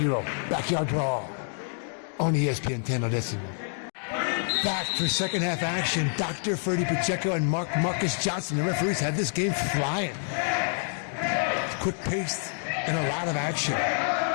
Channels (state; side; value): silent; right; 57 dB below the other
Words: backyard brawl on ESPN 10 Odessimo. Back for second half action. Dr. Ferdy Pacheco and Marcus Johnson, the referees, had this game flying. Quick paced and a lot of action.